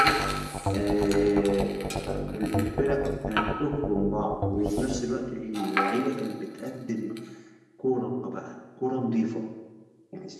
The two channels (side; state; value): both; identical; correlation 1.00